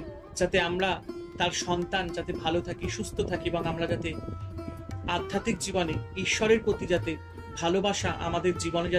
যাতে আমরা তার সন্তান যাতে ভালো থাকি, সুস্থ থাকি এবং আমরা যাতে আধ্যাত্মিক জীবনে ঈশ্বরের প্রতি যাতে ভালোবাসা আমাদের জীবনে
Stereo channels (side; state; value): both; identical; correlation 1.00